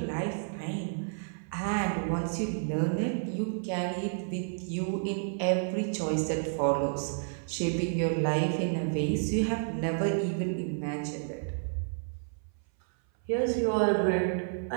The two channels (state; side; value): silent; left; 57 dB below the other